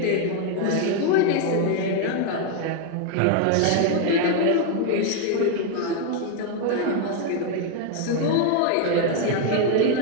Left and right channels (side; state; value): both; different; correlation 0.01